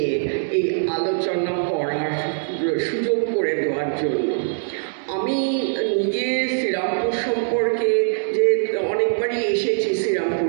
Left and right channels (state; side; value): silent; left; digital silence